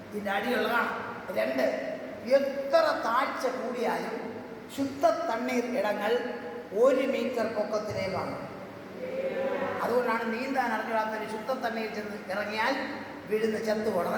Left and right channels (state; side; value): identical; both; correlation 1.00